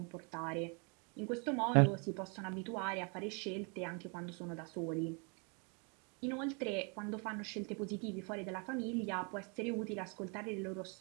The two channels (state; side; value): quieter; left; 35.3 dB